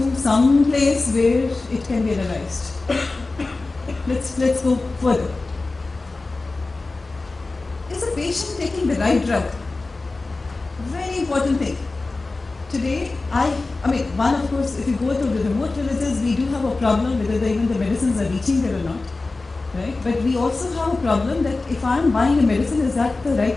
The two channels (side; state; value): right; quieter; 3.4 dB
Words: some place where it can be analyzed? Let's go further. Is the patient taking the right drug? Very important thing. Today, one, of course, if you go to the remote villages, we do have a problem whether even the medicines are reaching there or not, right? But we also have a problem that if I'm buying a medicine, is that the